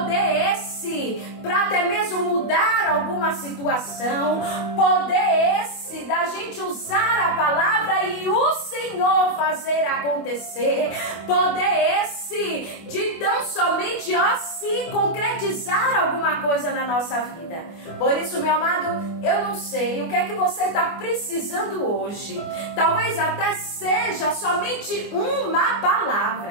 esse para até mesmo mudar alguma situação. Poder esse esse da gente usar a palavra e o Senhor fazer acontecer. Poder esse de tão somente se concretizar alguma coisa na nossa vida. Por isso, meu amado, eu não sei o que é que você está precisando hoje. Talvez até seja somente uma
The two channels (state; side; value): late; right; 24 ms